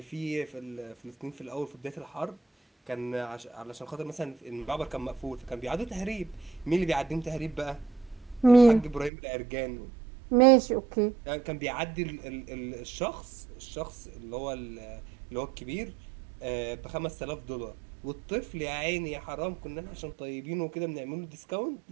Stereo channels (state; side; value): drops out; left; at 9.1 s